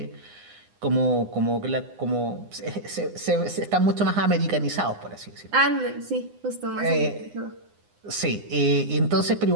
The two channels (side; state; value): left; late; 9.8 ms